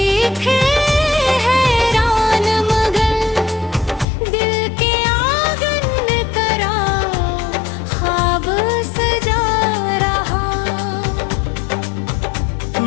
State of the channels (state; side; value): drops out; right; at 4.0 s